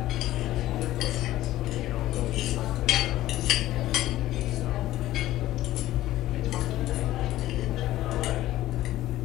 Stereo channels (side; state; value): right; quieter; 15.1 dB